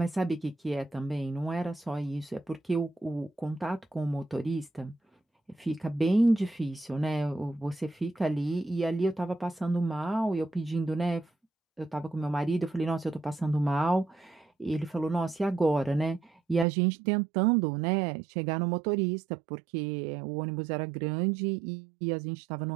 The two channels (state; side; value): drops out; left; at 16.7 s